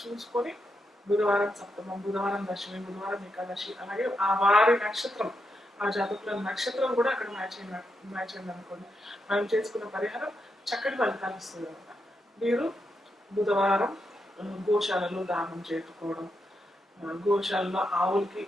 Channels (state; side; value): normal; both; correlation 0.83